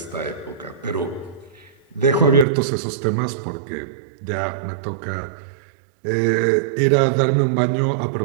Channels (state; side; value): drops out; left; at 2.5 s